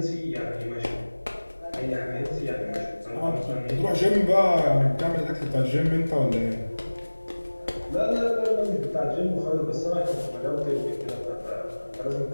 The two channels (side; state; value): both; inverted; correlation -1.00